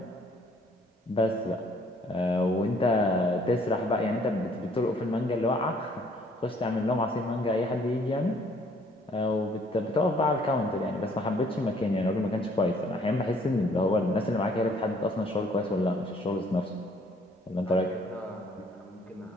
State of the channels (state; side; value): normal; both; correlation 0.61